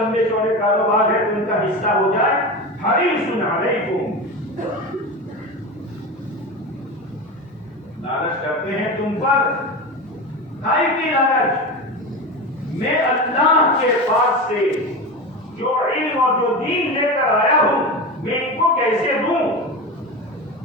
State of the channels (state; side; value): normal; both; correlation 0.24